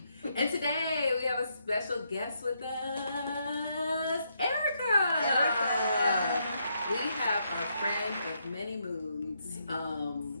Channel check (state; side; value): inverted; both; correlation -0.77